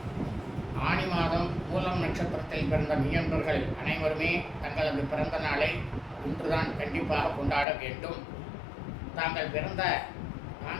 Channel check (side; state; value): right; drops out; at 7.7 s